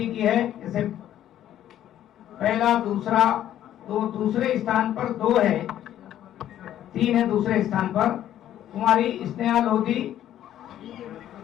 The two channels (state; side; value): quieter; right; 11.7 dB